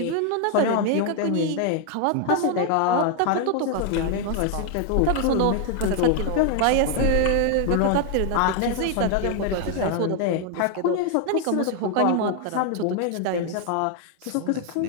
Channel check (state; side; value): different; both; correlation 0.00